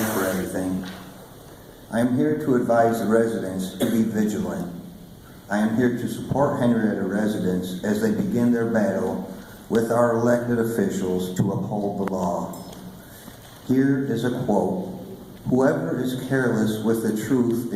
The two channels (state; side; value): identical; both; correlation 1.00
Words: for everything. I am here to advise the residents to be vigilant. I am here to support Henrietta residents as they begin their battle with our elected officials to uphold the law. Here is a quote: "Whoever is careless with the truth